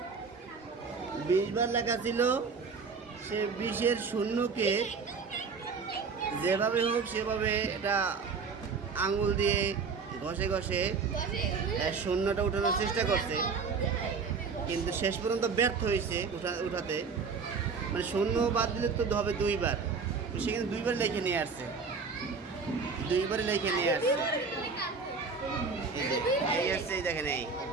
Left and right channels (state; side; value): quieter; left; 5.1 dB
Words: 20 বার লেখা ছিল। সে 20-এর শূন্যকে যেভাবে হোক সেভাবে এটা আঙুল দিয়ে ঘষে ঘষে শূন্যটা উঠানোর চেষ্টা করছে, কিন্তু শেষ পর্যন্ত ব্যর্থ হয়েছে উঠাতে। মানে শূন্য বাদ দিলে তো হবে 2 বার, সেখানে 2 বার লিখে নিয়ে আসছে, 2 বারে লিখে নিয়ে আসছে। এই আসছে, এই দেখেন, এই